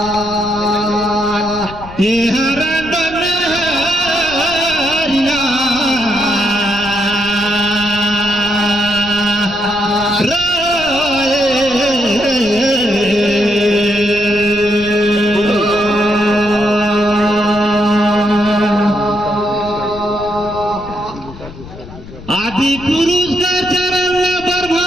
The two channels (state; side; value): noise; left; rumble, 16 dB below the sound